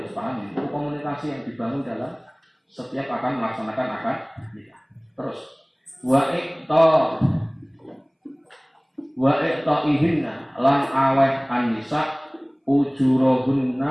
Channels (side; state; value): both; identical; correlation 1.00